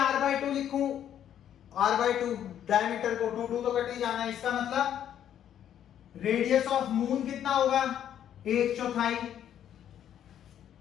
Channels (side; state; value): right; quieter; 10.2 dB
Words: लिखूं, R/2 डायमीटर को 2 तो कट ही जाना है। इसका मतलब रेडियस ऑफ मून कितना होगा? 1/4।